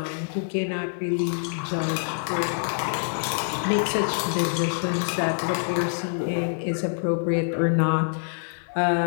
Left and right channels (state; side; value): silent; right; 58 dB below the other